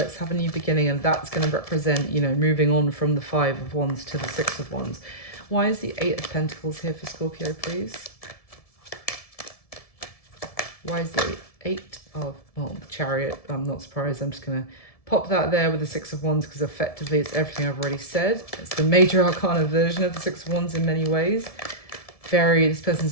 have a new beginning. And that's going to represent, you know, moving on from the Five of Wands to the Six of Wands. Why is the Eight of Pentacles here for Scorpio, please? Why is the Eight of, well, Chariot? I'm not surprised. I'm just going to pop that there with the Six of Wands, because effectively it's everything I've already said. It's the major arcana version of the Six of Wands in many ways. This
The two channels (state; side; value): late; right; 1.7 ms